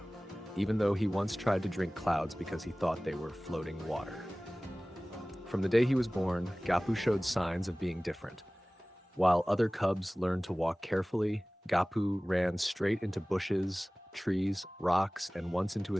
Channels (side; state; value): both; normal; correlation 0.98